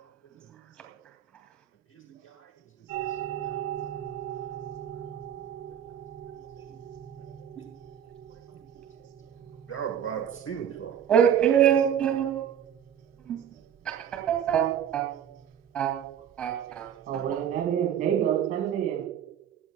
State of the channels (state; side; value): quieter; left; 9.3 dB